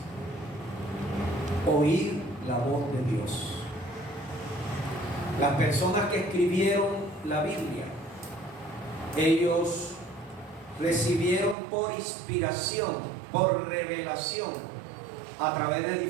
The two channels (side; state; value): left; drops out; at 11.6 s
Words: oír la voz de Dios. Las personas que escribieron la Biblia, ellos recibieron por inspiración, por revelación, a través de